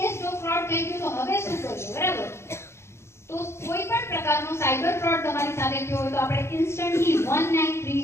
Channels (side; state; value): right; late; 0.13 ms